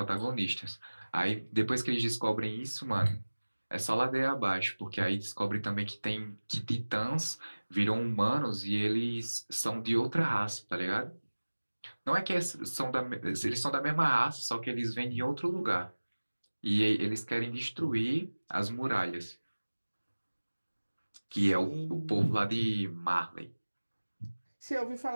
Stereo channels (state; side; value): inverted; both; correlation -1.00